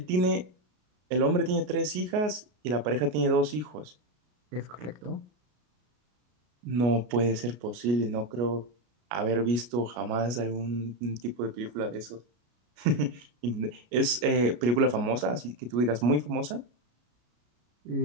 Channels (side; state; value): left; late; 33 ms